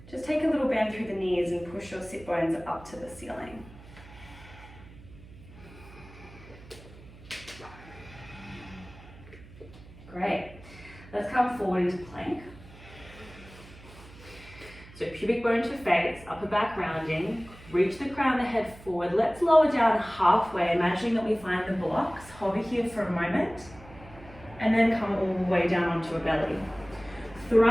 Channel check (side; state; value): right; noise; hum, 20 dB below the sound